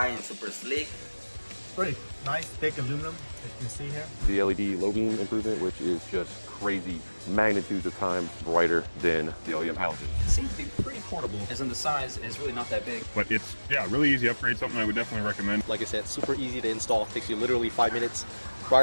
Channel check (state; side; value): inverted; both; correlation -1.00